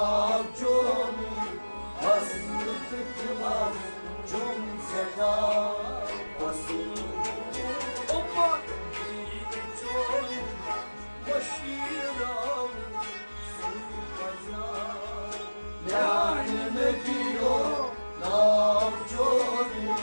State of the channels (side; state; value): both; inverted; correlation -1.00